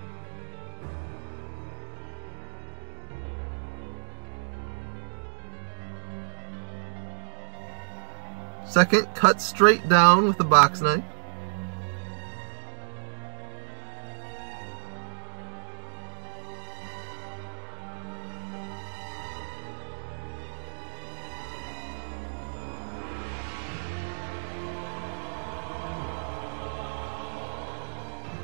Second, cut straight down with a box knife.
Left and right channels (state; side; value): silent; left; digital silence